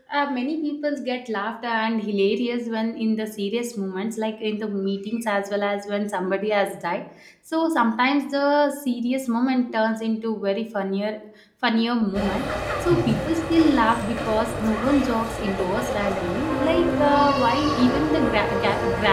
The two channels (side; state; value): both; identical; correlation 1.00